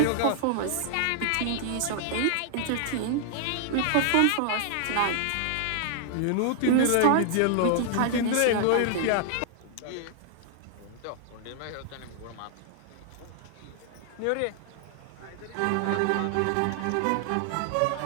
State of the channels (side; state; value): both; different; correlation 0.00